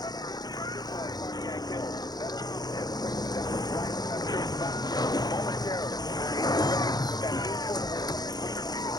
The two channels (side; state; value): right; late; 0.19 ms